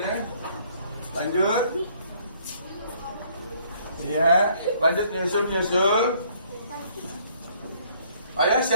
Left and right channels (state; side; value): inverted; both; correlation -0.63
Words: lanjut. Ya, lanjut nyusul. Ayo